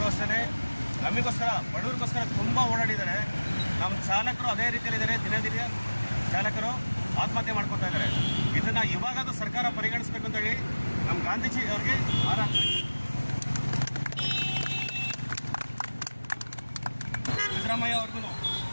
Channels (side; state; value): both; inverted; correlation -1.00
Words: ಅಷ್ಟೇ ನಮಗೋಸ್ಕರ ಬಡವರಿಗೋಸ್ಕರ ತುಂಬ ಓಡಾಡಿದ್ದಾರೆ. ನಮ್ಮ ಚಾಲಕರು ಅದೇ ರೀತಿಯಲ್ಲಿದ್ದಾರೆ. ದಿನ ಚಾಲಕರು ಆತ್ಮಹತ್ಯೆ ಮಾಡ್ಕೊತಾ ಇದ್ದಾರೆ. ಇದನ್ನು ಇವಾಗಾದ್ರೂ ಸರ್ಕಾರ ಪರಿಗಣಿಸಬೇಕು ಅಂತೇಳಿ ನಮ್ಮ ಗಾಂಧೀಜಿ ಅವರಿಗೆ ಸಿದ್ದರಾಮಯ್ಯ ಅವ್ರಿಗೂ